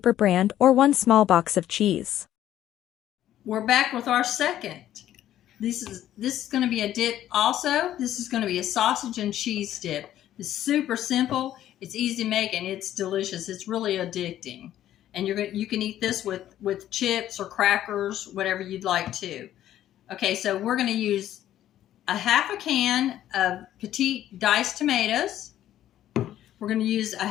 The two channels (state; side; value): quieter; right; 12.2 dB